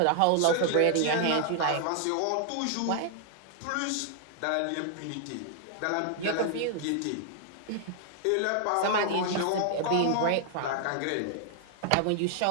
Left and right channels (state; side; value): different; both; correlation -0.01